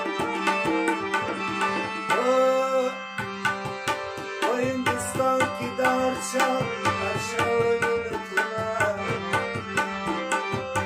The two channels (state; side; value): identical; both; correlation 1.00